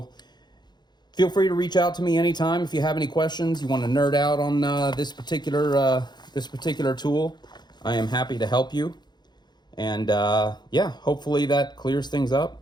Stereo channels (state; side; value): late; right; 0.21 ms